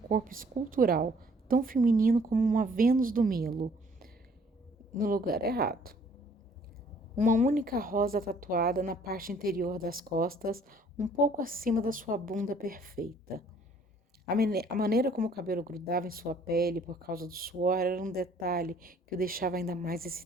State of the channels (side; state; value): both; normal; correlation 0.59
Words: escultural, tão feminino como uma Vênus do Milo. No lugar errado. Uma única rosa tatuada na parte interior das costas, um pouco acima da sua bunda perfeita. A maneira como o cabelo grudava em sua pele por causa do suor era um detalhe que o deixava ainda mais